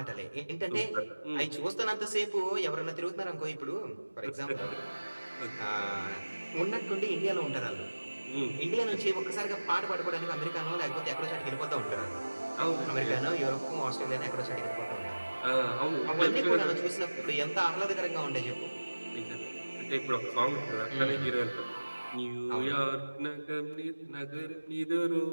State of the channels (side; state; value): both; inverted; correlation -1.00